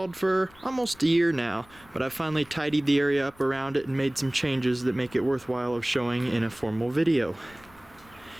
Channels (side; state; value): left; noise; rumble, 25 dB below the sound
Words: for almost a year now, but I've finally tidied the area up around it and made some changes that make it worthwhile of showing in a formal video.